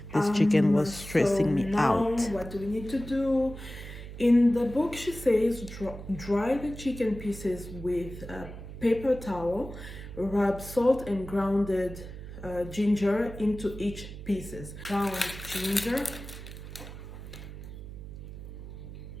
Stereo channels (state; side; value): noise; right; hum, 12 dB below the sound